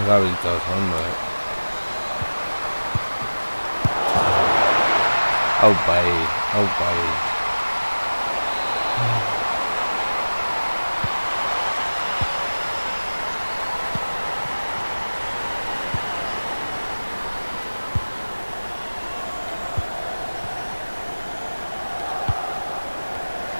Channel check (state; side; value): inverted; both; correlation -1.00